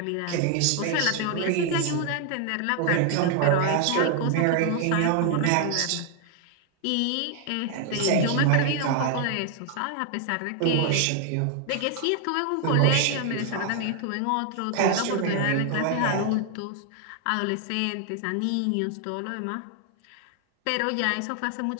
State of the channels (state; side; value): different; both; correlation 0.00